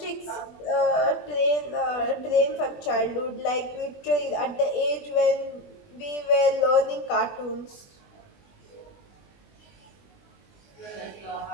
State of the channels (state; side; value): late; right; 20 ms